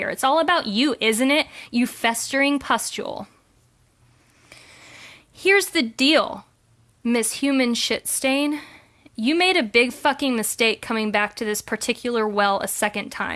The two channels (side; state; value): both; identical; correlation 1.00